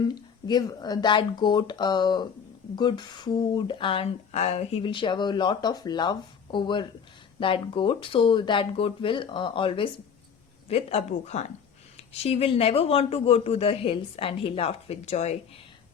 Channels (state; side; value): quieter; right; 7.0 dB